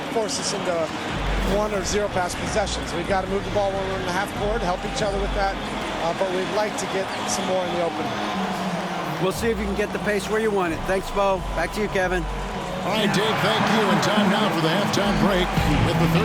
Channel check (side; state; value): both; identical; correlation 1.00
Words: force us into 1 or 0 pass possessions. We've got to move the ball when we're in the half court, help each other with that, but we'd like to get some more in the open. We'll see if you can get the pace where you want it. Thanks, Bo. Back to you, Kevin. All right, Dave, thank you. And time now for the halftime break with the